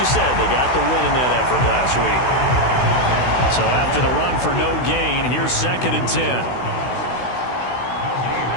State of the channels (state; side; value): late; right; 16 ms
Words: said, they got the win in that effort last week. So after the run for no gain, here's 2nd and 10.